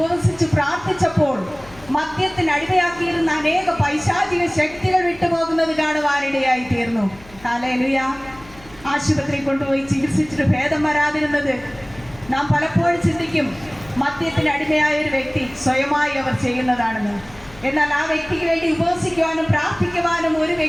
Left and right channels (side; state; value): left; noise; hum, 22 dB below the sound